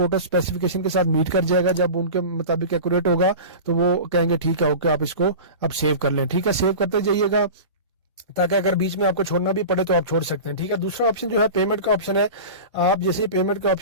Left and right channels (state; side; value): inverted; both; correlation -0.32